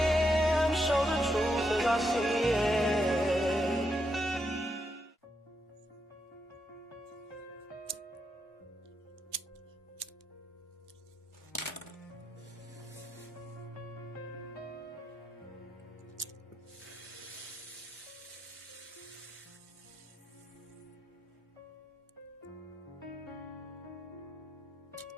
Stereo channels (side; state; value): both; normal; correlation 0.82